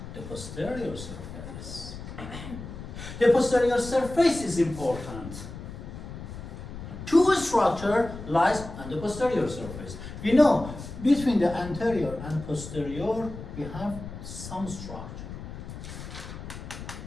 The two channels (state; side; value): noise; left; rumble, 11 dB below the sound